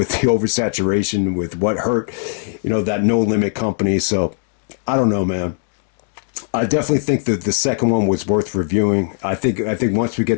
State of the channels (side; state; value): right; silent; digital silence